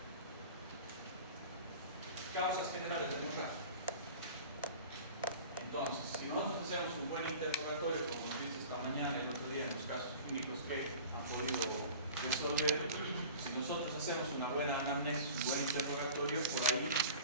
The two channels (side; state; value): both; inverted; correlation -0.40